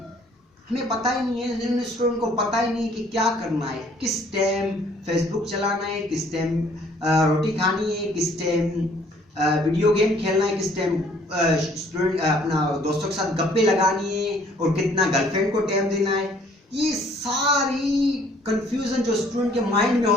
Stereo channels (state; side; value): normal; both; correlation 0.60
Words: हमें पता ही नहीं है, student को पता ही नहीं कि क्या करना है, किस टाइम फेसबुक चलाना है, किस टाइम रोटी खानी है, किस टाइम वीडियो गेम खेलना है, किस टाइम स्टूडेंट अपना दोस्तों के साथ गप्पे लगानी है, और कितना गर्लफ्रेंड को टाइम देना है। ये सारी कंफ्यूजन जो स्टूडेंट के माइंड में